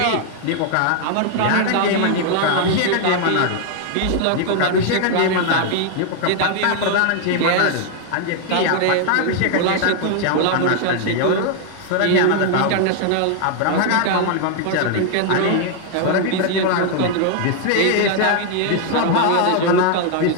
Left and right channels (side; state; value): both; different; correlation 0.00